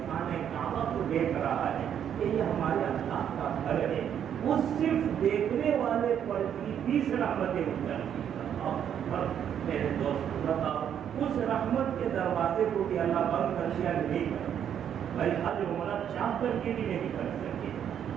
خانہ کعبہ کو دیکھ رہا ہے کہ یہ ہمارے اللہ کا گھر ہے، وہ صرف دیکھنے والے پر بھی 20 رحمتیں اترتی ہیں۔ میرے دوست بتاؤ، اس رحمت کے دروازے کو بھی اللہ بند کر دیا نہیں کر بھائی حج عمرہ چاہ کر کے بھی نہیں کر سکے۔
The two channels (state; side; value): quieter; left; 9.1 dB